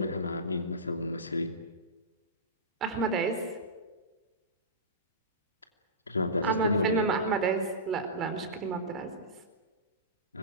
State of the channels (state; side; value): normal; both; correlation -0.19